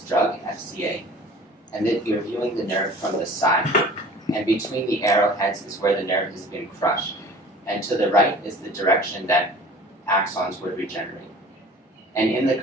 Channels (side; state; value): both; normal; correlation 0.45